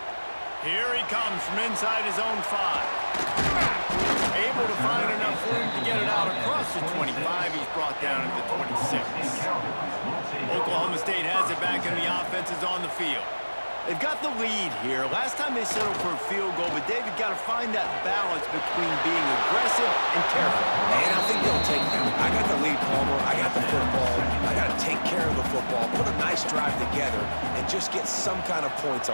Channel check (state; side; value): inverted; both; correlation -1.00